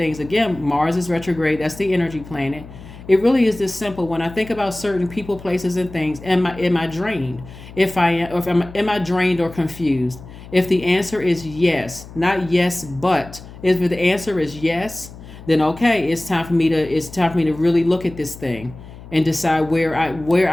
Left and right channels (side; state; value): left; noise; hum, 17 dB below the sound